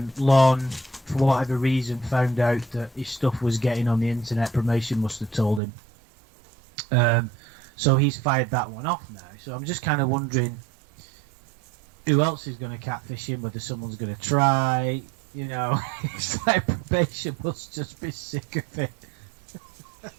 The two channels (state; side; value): drops out; left; at 5.6 s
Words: Lorne, for whatever reason, found out that his stuff was getting on the internet. Promotion must have told him. So he's fired that one off now. So I'm just kind of wondering who else is going to catfish him, whether someone's going to try, you know. It's like probation must just be sick of it.